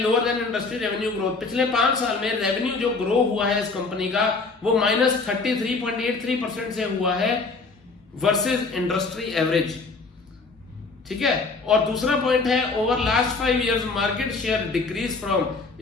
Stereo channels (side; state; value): right; quieter; 4.0 dB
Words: than industry revenue growth, पिछले 5 साल में रेवेन्यू जो ग्रो हुआ है इस कंपनी का वो -33.83% से हुआ है वर्सेस इंडस्ट्री एवरेज, ठीक है। और दूसरा पॉइंट है over last 5 years market share decrease from,